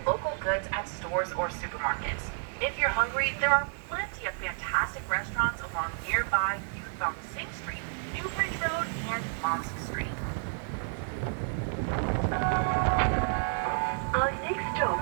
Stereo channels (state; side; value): silent; left; 57 dB below the other